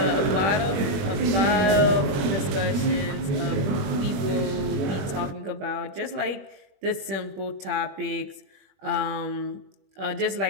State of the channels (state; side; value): late; left; 21 ms